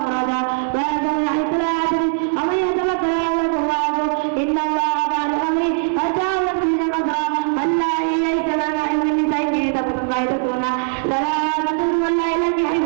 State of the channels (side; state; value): left; silent; 63 dB below the other